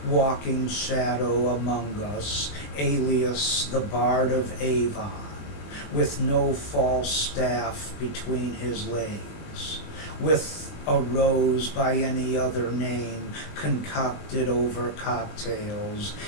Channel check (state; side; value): late; right; 21 ms